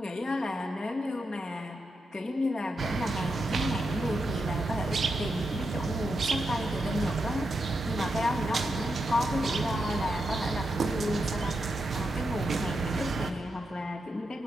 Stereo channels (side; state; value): both; normal; correlation 0.85